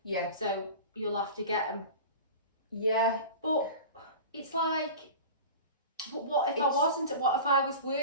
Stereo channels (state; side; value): inverted; both; correlation -0.34